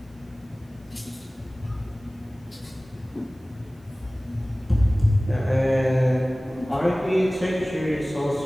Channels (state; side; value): normal; both; correlation 0.98